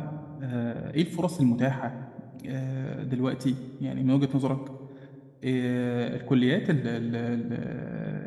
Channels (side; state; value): both; identical; correlation 1.00